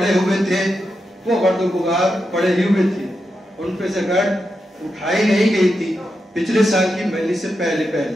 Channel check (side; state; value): both; normal; correlation 0.87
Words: ہوئے تھے وہ گرد و غبار پڑے ہی ہوئے تھے، ان پہ سے گرد اٹھائی نہیں گئی تھی۔ پچھلے سال کی مجلس سے پہلے